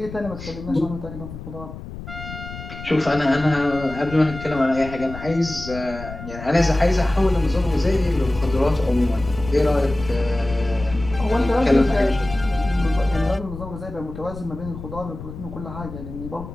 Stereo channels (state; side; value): noise; left; rumble, 12 dB below the sound